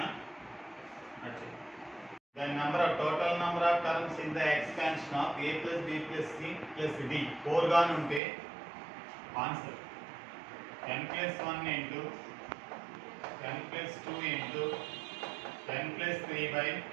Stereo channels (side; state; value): left; drops out; at 8.2 s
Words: the total number of terms in the expansion of a plus b plus c plus d 4 గా ఉంటే answer n plus 1 into n plus 2 into n plus 3 by